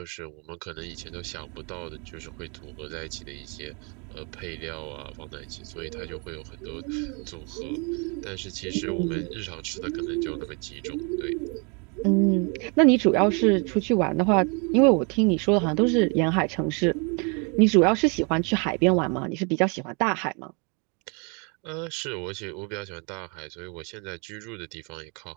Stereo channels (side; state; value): left; quieter; 33.8 dB